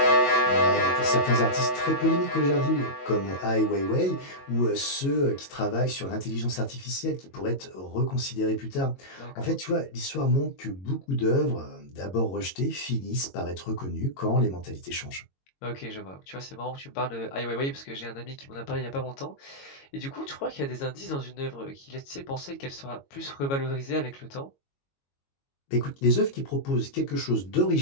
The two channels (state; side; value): late; right; 22 ms